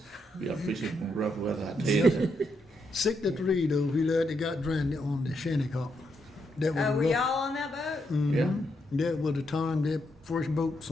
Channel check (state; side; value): normal; both; correlation 0.79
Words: we are fishing from rough weather, I tell you. 63 though, we lad that got drowned on the Shinnecock. That was Oh, were rough. y'all on that boat? Yeah. That was the time that first boat